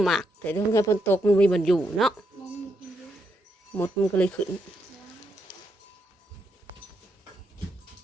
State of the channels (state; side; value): normal; both; correlation 0.80